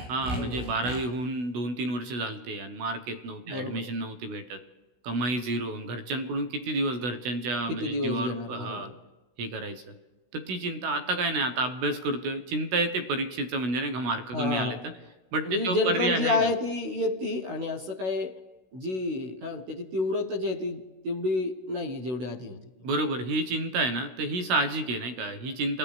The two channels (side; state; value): left; late; 16 ms